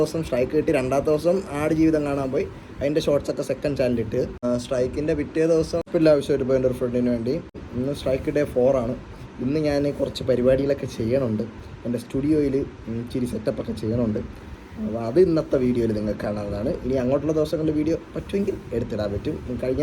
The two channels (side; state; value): both; identical; correlation 1.00